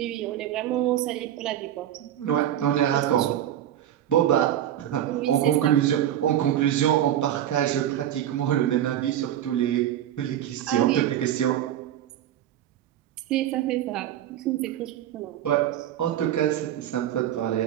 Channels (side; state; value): left; quieter; 11.4 dB